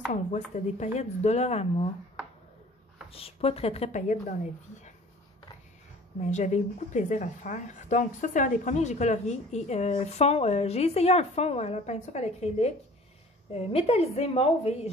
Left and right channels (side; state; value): both; normal; correlation 0.48